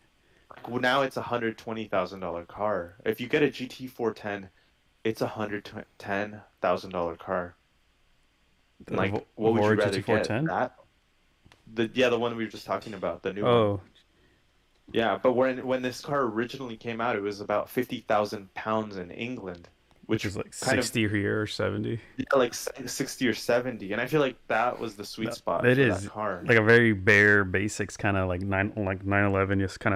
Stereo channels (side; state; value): both; identical; correlation 1.00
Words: Well, now it's $120,000 car. If you get a GT 410, it's $110,000 car. The Like, what would you Evora rather get? GT410. That the one we were just talking about, the new one. Oh, Yeah, but when this car originally came out, it was about 50,000 pounds in England, which which is like kind of 60 here or 70. yeah, like 60 or 70, and I feel like that was the sweet No, spot it for that is car. like a very bare basics kind of like 911, just kind